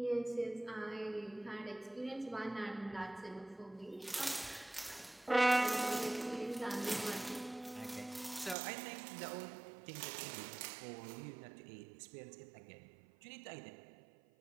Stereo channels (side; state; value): left; drops out; at 8.6 s